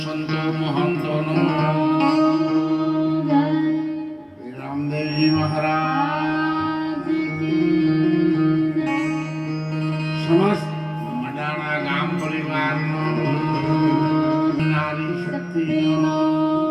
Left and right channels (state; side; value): identical; both; correlation 1.00